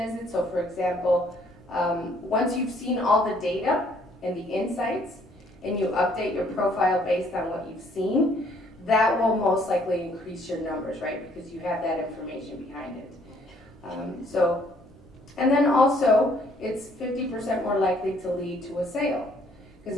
So for example, once you've seen all the data and the insights and you update your profile based on what you've seen, that will most likely increase your numbers, right? Because you have that information behind it. And then also it's 50% more likely to lead to a sale, because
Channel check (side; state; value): both; normal; correlation 0.63